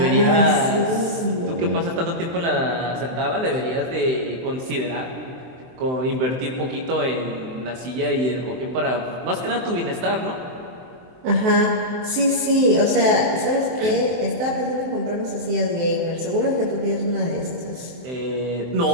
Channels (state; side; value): late; left; 23 ms